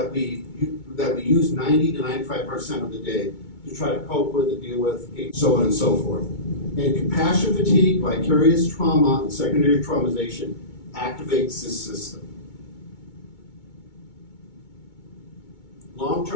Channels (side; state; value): right; late; 2.2 ms